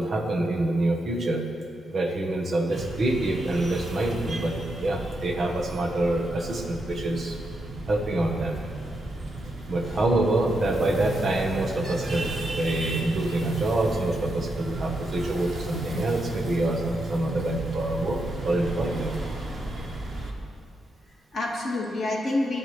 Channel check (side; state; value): both; normal; correlation 0.83